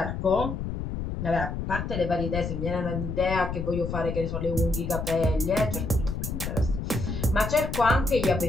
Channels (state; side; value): noise; left; rumble, 4 dB below the sound